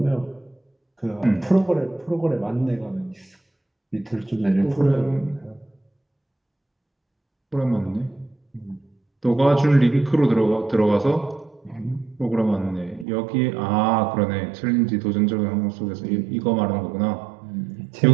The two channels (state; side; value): drops out; left; at 13.1 s